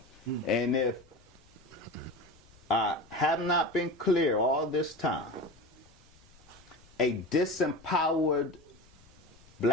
And if I have not been clear all this time, a disempowered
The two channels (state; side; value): noise; left; rumble, 27 dB below the sound